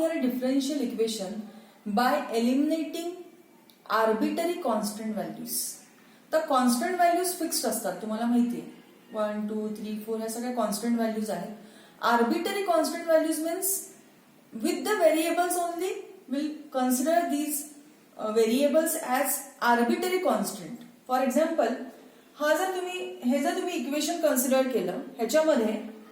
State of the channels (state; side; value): identical; both; correlation 1.00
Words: a differential equation by eliminating arbitrary constant values. तर constant values fixed असतात, तुम्हाला माहिती आहे. 1 2 3 4 ह्या सगळ्या कॉन्स्टंट व्हॅल्यूज आहेत. Arbitrary constant values means with the variables only we'll consider these variables as arbitrary constant. For example, हे जर तुम्ही इक्वेशन कन्सिडर केलं, ह्याच्यामध्ये